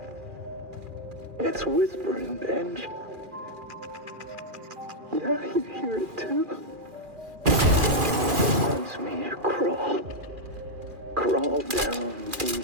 It's whispering, Benj. Yeah, you hear it too. Wants me to crawl. Crawl down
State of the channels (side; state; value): left; late; 2.4 ms